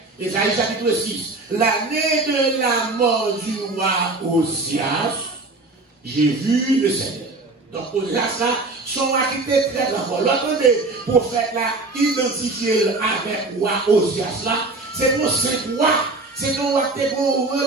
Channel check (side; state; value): left; quieter; 3.3 dB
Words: Esaïe chapitre 6. L'année de la mort du roi Osias. J'ai vu le Seigneur. Donc, au-delà de ça, son activité très grand. L'autre prophète là, identifié avec roi Osias là, c'est pour 5 rois. C'est un roi qui a une